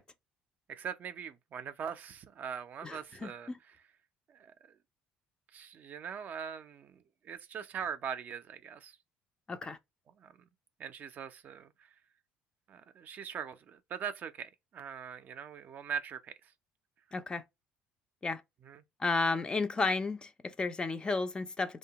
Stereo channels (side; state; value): both; normal; correlation 0.70